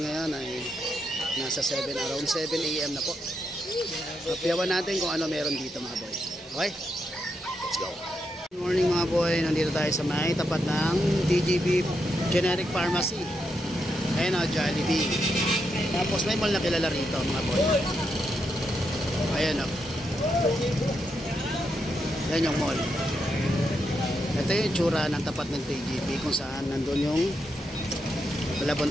ngayon ay nasa 7, around 7 AM na po. Kapiyawan natin kung ano meron dito mga boy. Okay? Let's go. Good morning mga boy. Nandito tayo sa may tapat ng DGB Generic Pharmacy. Ayan o, Jollibee. Tapos may mall na kilala rito mga boy. Ayan o. Ayan yung mall. Ito yung tsura ng tapat ng TGP kung saan nandun yung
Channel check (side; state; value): both; normal; correlation 0.82